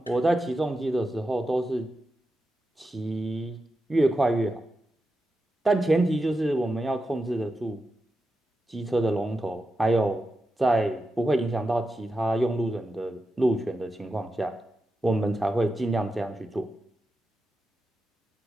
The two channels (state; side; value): normal; both; correlation 0.89